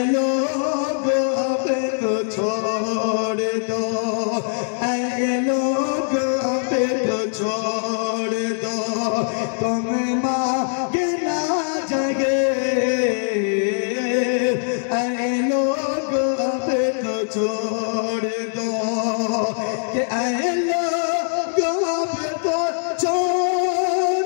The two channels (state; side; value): silent; right; digital silence